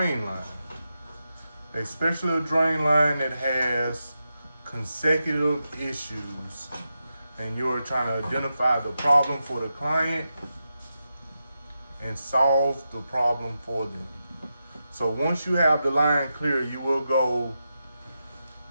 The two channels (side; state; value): both; inverted; correlation -0.88